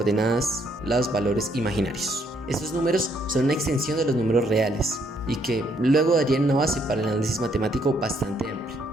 los valores imaginarios. Estos números son una extensión de los números reales y que luego darían una base para el análisis matemático bastante amplio.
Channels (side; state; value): both; normal; correlation 0.71